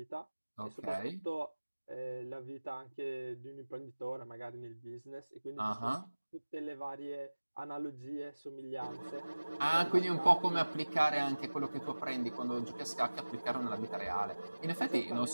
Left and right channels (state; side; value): inverted; both; correlation -1.00